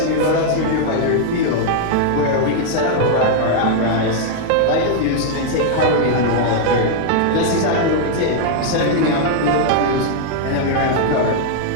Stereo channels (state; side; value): different; both; correlation -0.01